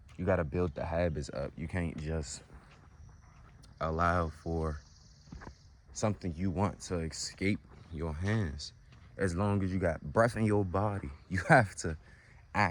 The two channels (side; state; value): both; identical; correlation 1.00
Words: you got to build the habits up. You can't just allow for something you want to escape your hands. As long as you got breath in your body, you have to